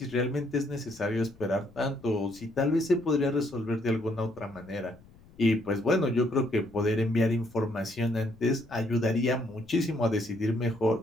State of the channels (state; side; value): noise; left; rumble, 25 dB below the sound